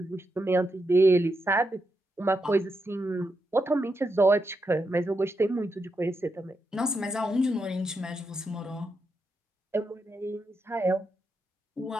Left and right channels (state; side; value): normal; both; correlation 0.84